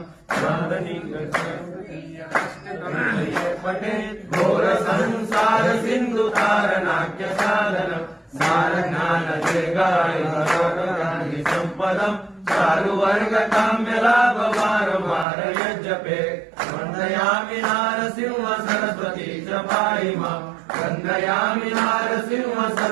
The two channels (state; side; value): drops out; left; at 15.2 s